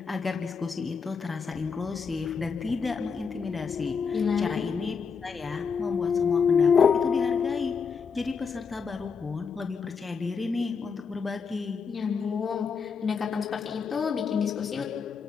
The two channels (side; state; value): right; quieter; 5.7 dB